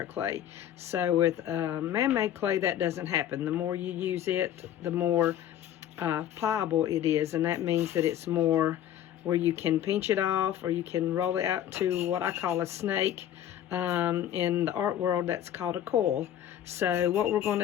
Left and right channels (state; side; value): quieter; right; 11.0 dB